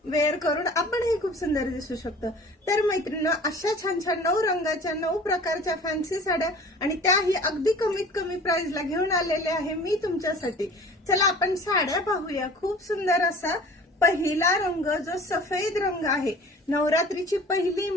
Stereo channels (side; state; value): both; normal; correlation 0.45